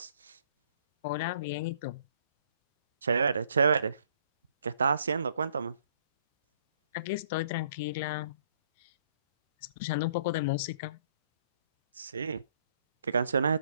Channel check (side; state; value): both; inverted; correlation -0.64